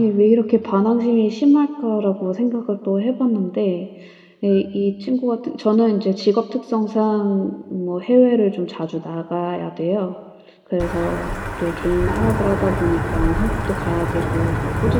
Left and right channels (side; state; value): both; identical; correlation 1.00